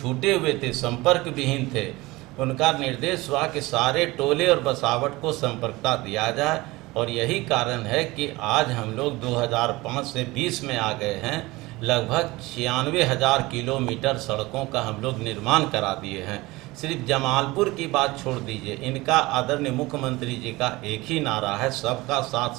हुए थे, संपर्क विहीन थे, उनका निर्देश हुआ कि सारे टोले और बसावट को संपर्कता दिया जाए। और यही कारण है कि आज हम लोग 2005 से 20 में आ गए हैं, लगभग 96,000 किलोमीटर सड़कों का हम लोग निर्माण करा दिए हैं। सिर्फ जमालपुर की बात छोड़ दीजिए, इनका आदरणीय मुख्यमंत्री जी का एक ही नारा है, सबका साथ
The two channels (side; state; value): left; quieter; 21.0 dB